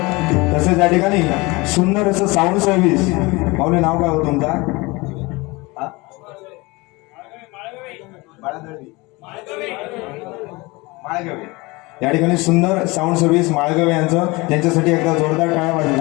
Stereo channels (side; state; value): right; quieter; 23.9 dB